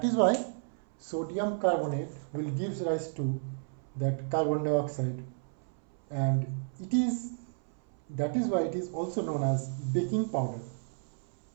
is why sodium carbonate will give rise to that carbon dioxide, and that is why it is also known as baking powder.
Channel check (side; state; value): left; silent; 56 dB below the other